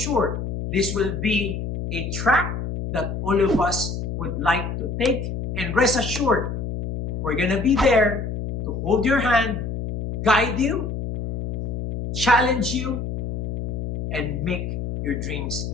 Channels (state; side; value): noise; left; hum, 4 dB below the sound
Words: this will be a track that all of us would like to take. And rest assured, we're gonna be there to hold your hand, guide you, challenge you, and make your dreams